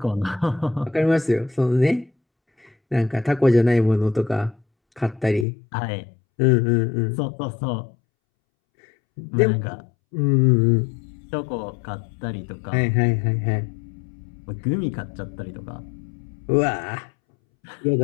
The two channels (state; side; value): drops out; right; at 5.5 s